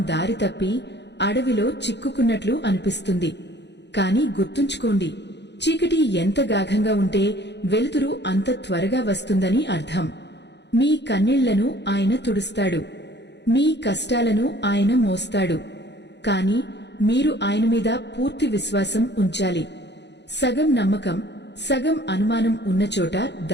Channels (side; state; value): right; late; 0.50 ms